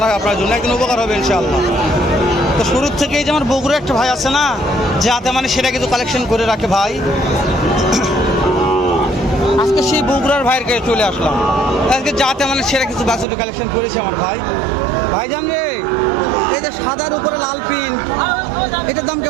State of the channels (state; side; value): drops out; left; at 13.2 s